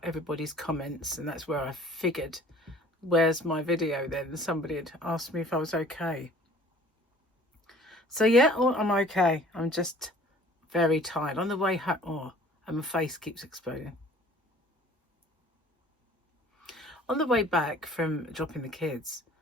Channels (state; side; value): normal; both; correlation 0.51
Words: everybody's comments, and that's where I figured, where's my video then? Somebody had asked me if I was okay. So yeah, I'm okay. I'm just very tired. On the way home, and my face keeps exploding. On the way back from dropping the kids,